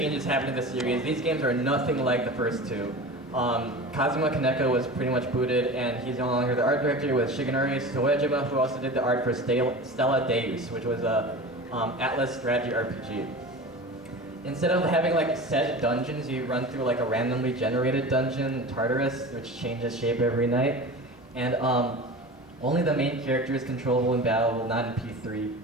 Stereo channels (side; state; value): both; normal; correlation 0.33